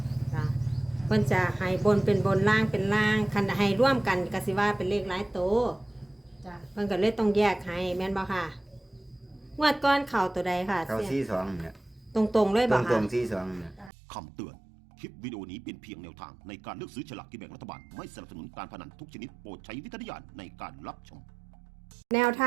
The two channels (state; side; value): drops out; left; at 13.9 s